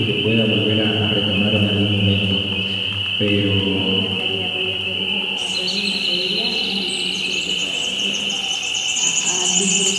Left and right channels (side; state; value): both; identical; correlation 1.00